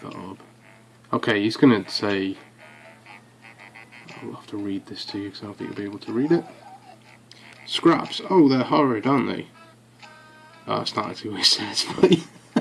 that orb. Okay, he's going to say, I'll have to read this to you because I don't think you'll be able to read it. Scraps, oh they're horrid, aren't they? Oh, that's not actually what it says, but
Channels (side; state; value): both; identical; correlation 1.00